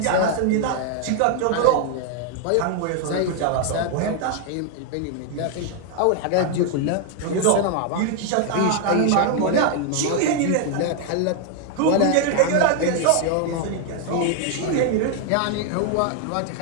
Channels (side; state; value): both; different; correlation 0.00